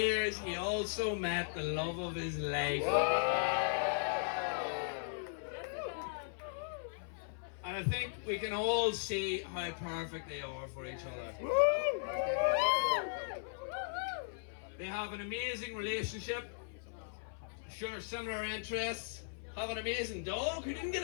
he also met the love of his life. And I think we can all see how perfect they are for each other. They have an amazing relationship, share similar interests, have an amazing dog who didn't get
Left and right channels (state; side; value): silent; right; 53 dB below the other